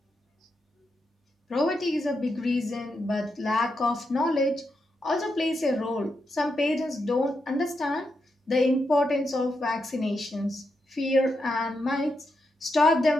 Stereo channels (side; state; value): both; normal; correlation 0.84